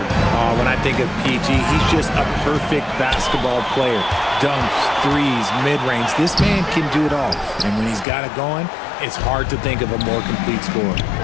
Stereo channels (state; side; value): drops out; right; at 8.1 s